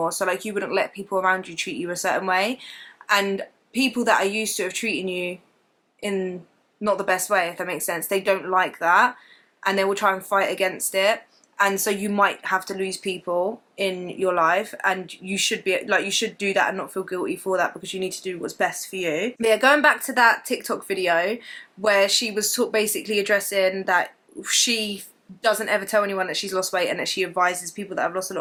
So like, you wouldn't let people around you treat you a certain way, and people that are used to have treating you in not the best way, if that makes sense, they don't like that, and they will try and fight against it. And so you might have to lose people in your life, and you should be like, you should do that and not feel guilty for that, because you need to do what's best for you. But yeah, going back to that TikTok video where she was basically addressing that she doesn't ever tell anyone that she's lost weight, and that she advises people that have lost a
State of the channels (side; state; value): both; identical; correlation 1.00